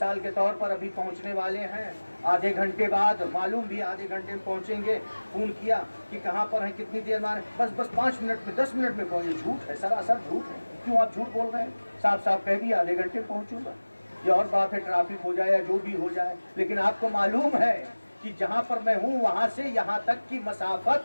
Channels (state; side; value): inverted; both; correlation -1.00